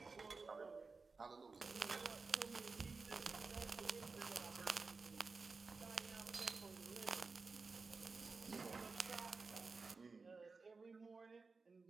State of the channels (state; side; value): quieter; left; 4.3 dB